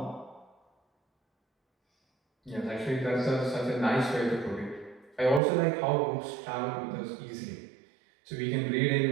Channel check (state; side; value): drops out; left; at 5.4 s